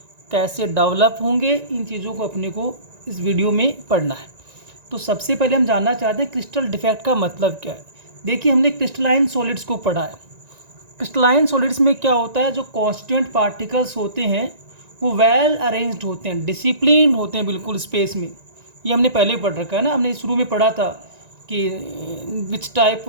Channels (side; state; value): left; late; 1.9 ms